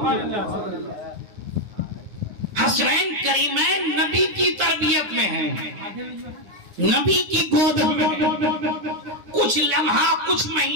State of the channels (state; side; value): late; left; 9.7 ms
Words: حسنین کریمین نبی کی تربیت میں ہیں، نبی کی گود میں، کچھ لمحہ، کچھ